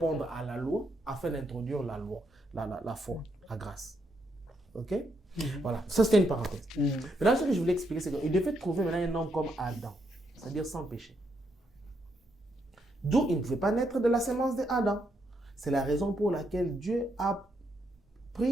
à la loi afin d'introduire la loi, la foi, la grâce. Ok? Voilà, ça c'était une parenthèse. Maintenant, ce que je voulais expliquer, c'est qu'il devait trouver maintenant un homme comme Adam, c'est-à-dire sans péché. D'où il ne pouvait pas naître de la sémence d'Adam. C'est la raison pour laquelle Dieu a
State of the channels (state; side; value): normal; both; correlation 0.78